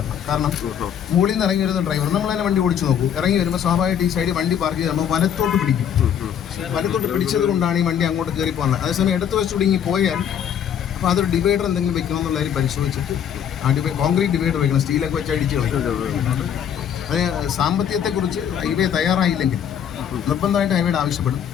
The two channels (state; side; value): quieter; right; 8.8 dB